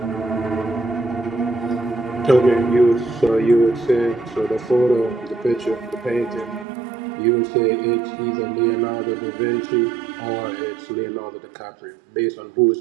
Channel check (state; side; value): drops out; left; at 6.7 s